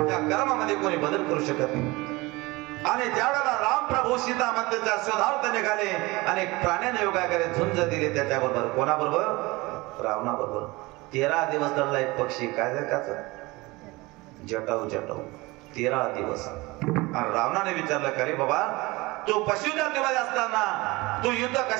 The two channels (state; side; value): quieter; left; 22.4 dB